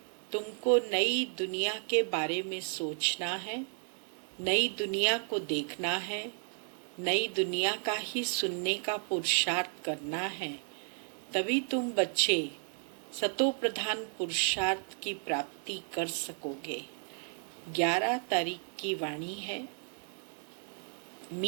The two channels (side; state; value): left; silent; 56 dB below the other